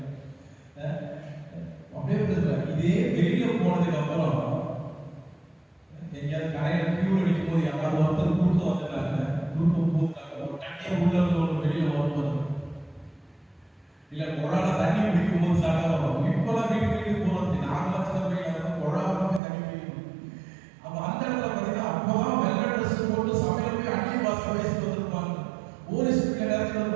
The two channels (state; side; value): drops out; left; at 19.4 s